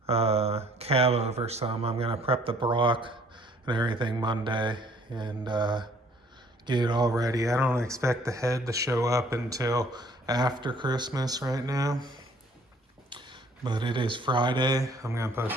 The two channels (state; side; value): normal; both; correlation 0.59